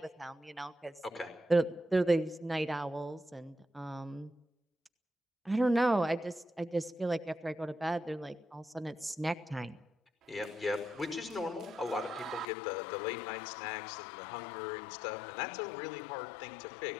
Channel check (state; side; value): drops out; right; at 12.5 s